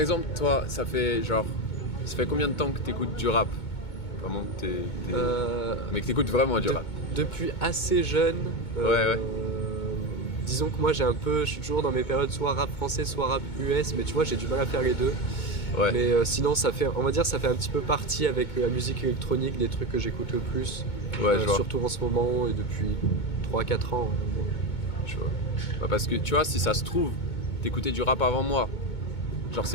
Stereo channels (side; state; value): right; late; 2.2 ms